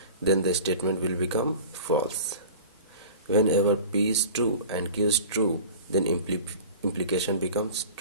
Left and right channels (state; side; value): inverted; both; correlation -0.37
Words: then the statement will become false. Whenever P is true and Q is true, then implication becomes